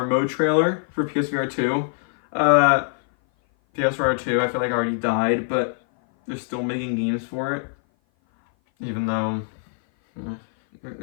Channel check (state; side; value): silent; right; 57 dB below the other